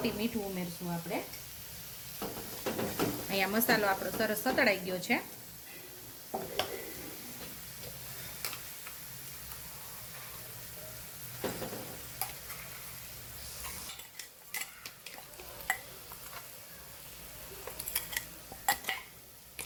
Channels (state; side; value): identical; both; correlation 1.00